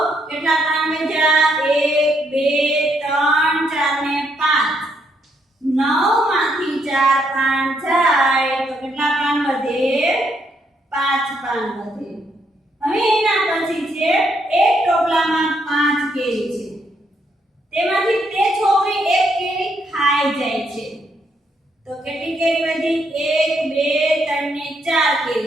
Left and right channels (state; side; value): normal; both; correlation 0.74